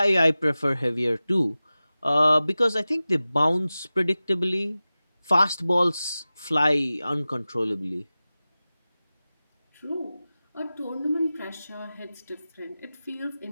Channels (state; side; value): inverted; both; correlation -0.96